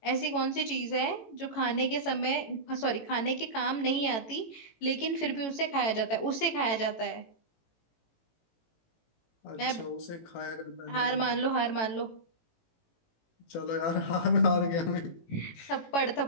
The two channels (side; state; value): right; late; 18 ms